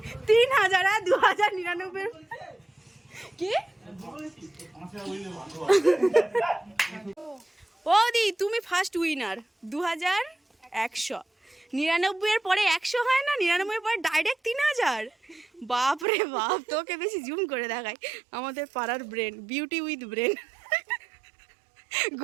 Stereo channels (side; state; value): left; drops out; at 16.1 s